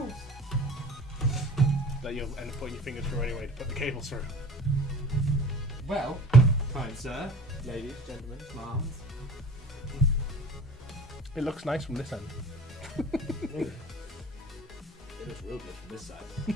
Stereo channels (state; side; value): normal; both; correlation 0.42